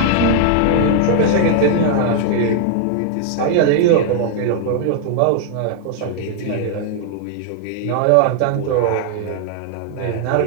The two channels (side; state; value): both; different; correlation 0.00